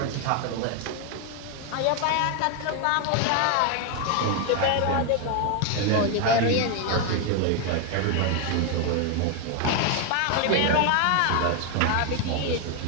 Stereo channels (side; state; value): both; different; correlation 0.01